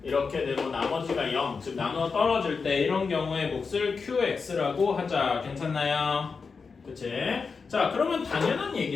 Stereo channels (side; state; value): right; quieter; 5.0 dB